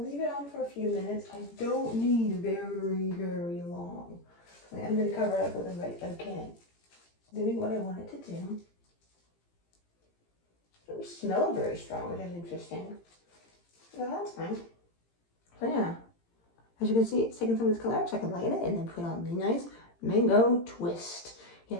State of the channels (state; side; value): late; right; 18 ms